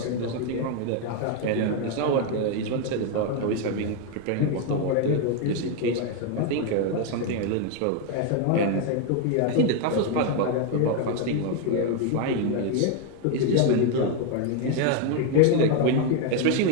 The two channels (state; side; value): different; both; correlation 0.01